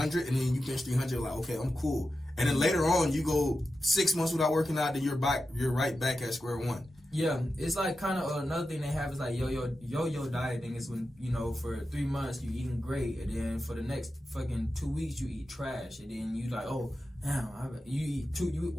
and then you bench 300. Like, okay, I'm cool. And then later on, you go 6 months without working out, then you're right back at square one. Yeah, it's like kind of another thing they have is like yo-yo dieting is when, you know, for 3 months you eating great, and then for the next fucking 2 weeks you eat trash, and then you like, oh, damn, you eat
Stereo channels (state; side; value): normal; both; correlation 0.91